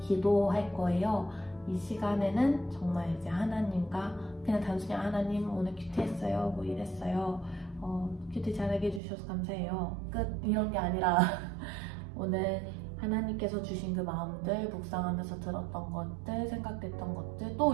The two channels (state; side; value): drops out; left; at 9.0 s